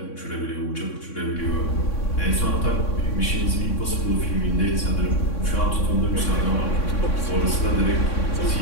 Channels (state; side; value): late; right; 3.6 ms